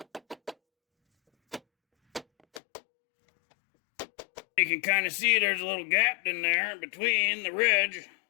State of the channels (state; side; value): drops out; right; at 2.6 s